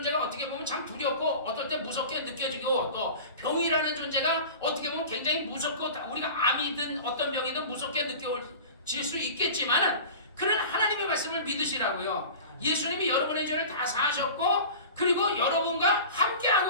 어떻게 보면 참 두렵고 어떨 때 무섭게 느껴지고 또 병이라는 존재가 어떻게 보면 굉장히 무섭고 우리가 암이든 어떤 병이든 무섭게 느껴질 수 있겠지만은 그런 하나님의 말씀을 믿으시라고요. 예수님이 여러분의 죄를 다 사하셨고 그리고 여러분과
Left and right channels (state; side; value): inverted; both; correlation -0.36